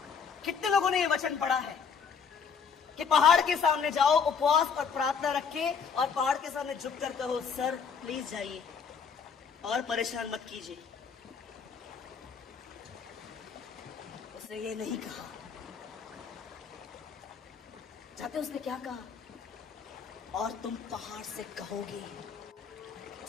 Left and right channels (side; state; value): right; quieter; 6.2 dB